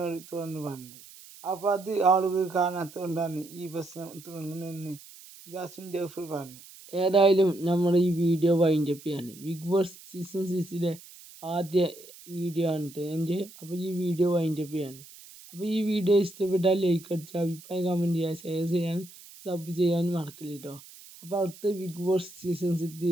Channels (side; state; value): right; noise; hiss, 19 dB below the sound